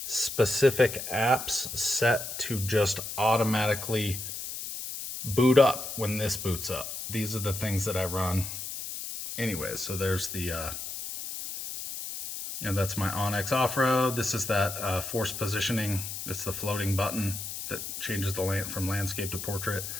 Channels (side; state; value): left; noise; hiss, 7 dB below the sound